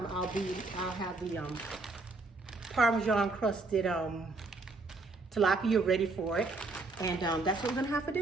I'll have the Parmesan crusted tilapia ready for it. And that's what we're gonna have for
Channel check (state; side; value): quieter; left; 3.4 dB